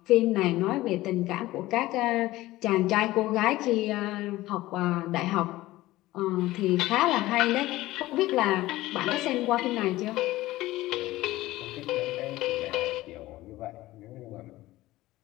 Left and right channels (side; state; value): right; quieter; 17.3 dB